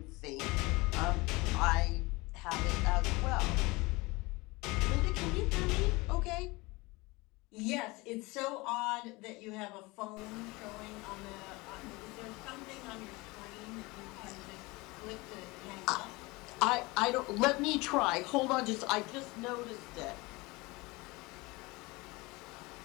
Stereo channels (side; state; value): right; quieter; 23.5 dB